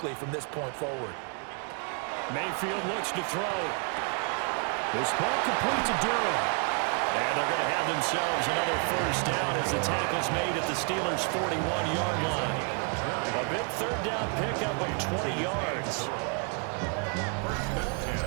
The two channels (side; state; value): left; quieter; 39.8 dB